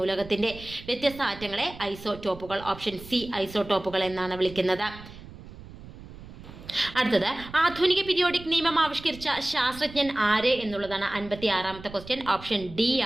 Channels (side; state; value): right; noise; rumble, 16 dB below the sound